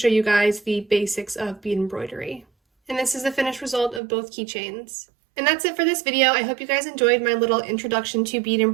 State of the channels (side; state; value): left; drops out; at 4.0 s